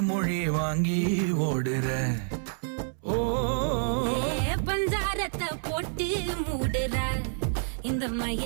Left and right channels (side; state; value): left; silent; 59 dB below the other